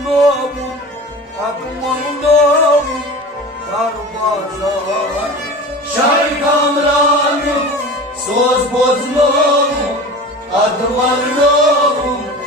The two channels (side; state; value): both; normal; correlation 0.35